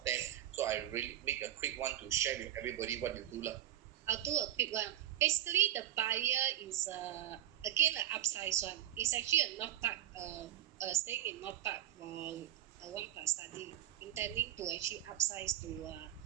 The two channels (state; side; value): quieter; left; 12.2 dB